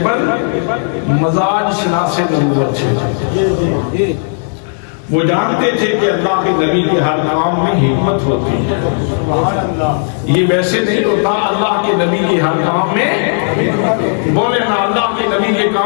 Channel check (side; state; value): right; silent; digital silence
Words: مزاج شناس نبوت ہے، وہ جانتے تھے کہ اللہ کے نبی کے ہر کام میں حکمت ہوتی ہے. یہ ویسے نہیں ہوتا، اللہ کے نبی کے ہر کام میں، بولے نا، اللہ کے نبی کے